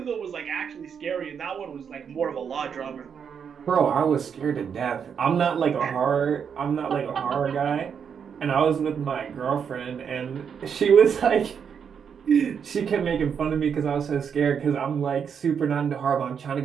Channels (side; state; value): left; quieter; 7.2 dB